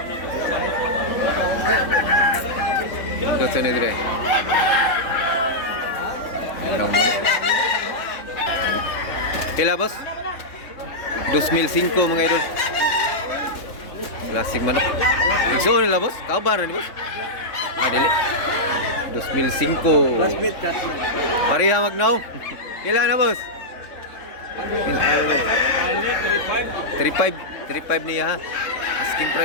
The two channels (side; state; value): right; late; 3.7 ms